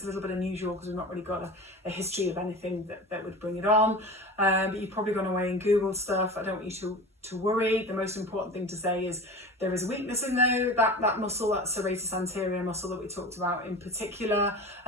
a little bit unusual because we've not really got a history of anything that would bring it on. But you've probably gone away and Googled stuff. I don't want you to worry. The most important thing to say is there is a weakness in that muscle, that serratus anterior muscle that we talked about in particular,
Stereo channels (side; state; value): both; normal; correlation 0.33